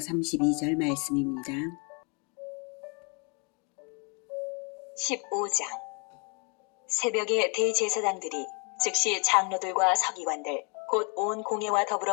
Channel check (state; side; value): quieter; right; 33.9 dB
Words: 말씀입니다. 15장. 새벽에 대제사장들이 즉시 장로들과 서기관들 곧 온 공회와